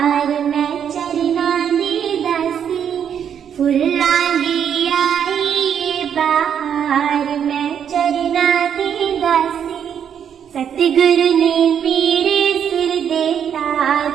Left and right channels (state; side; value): quieter; left; 8.4 dB